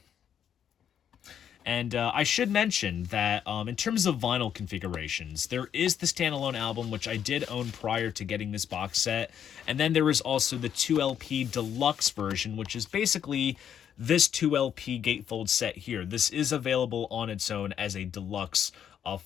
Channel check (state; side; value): quieter; right; 9.0 dB